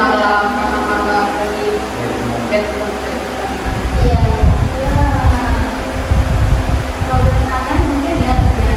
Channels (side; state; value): both; identical; correlation 1.00